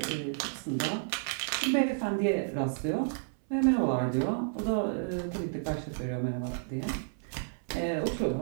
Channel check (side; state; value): left; silent; 57 dB below the other